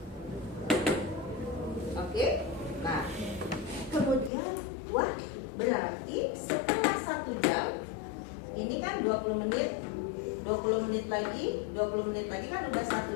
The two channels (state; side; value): drops out; right; at 4.3 s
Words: Oke. Nah, kemudian wah, berarti setelah 1 jam ini kan 20 menit lagi kan udah